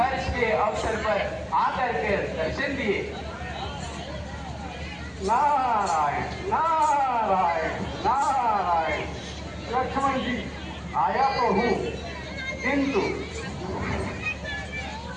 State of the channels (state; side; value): identical; both; correlation 1.00